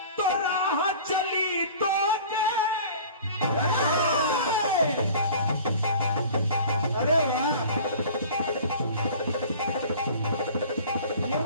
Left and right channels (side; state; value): both; inverted; correlation -0.44